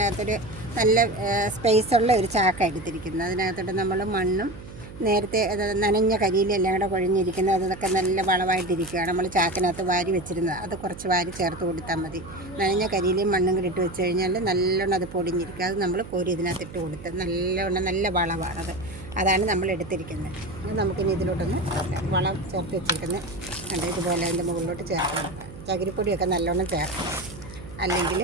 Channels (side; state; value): right; noise; hum, 14 dB below the sound